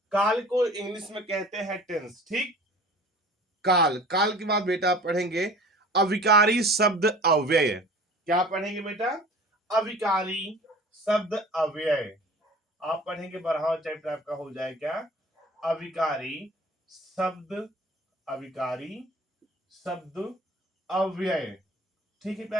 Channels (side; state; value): both; normal; correlation 0.44